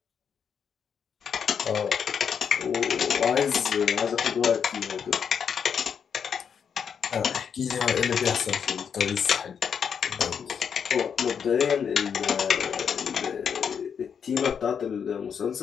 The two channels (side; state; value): right; quieter; 7.2 dB